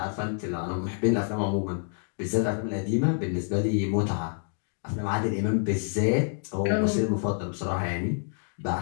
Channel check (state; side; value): silent; right; 60 dB below the other